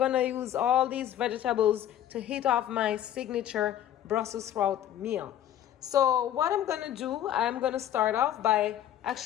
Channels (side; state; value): right; quieter; 11.2 dB